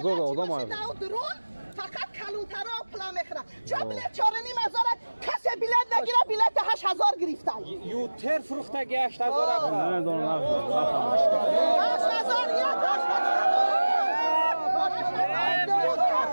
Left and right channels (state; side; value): inverted; both; correlation -1.00